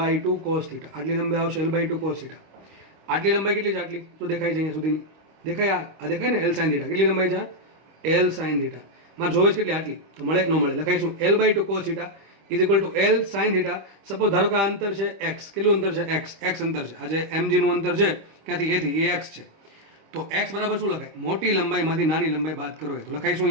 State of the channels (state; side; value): late; left; 25 ms